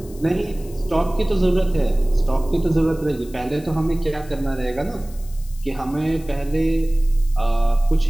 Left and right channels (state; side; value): noise; left; hiss, 22 dB below the sound